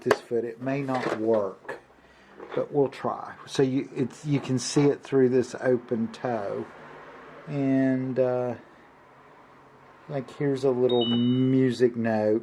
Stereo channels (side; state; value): both; identical; correlation 1.00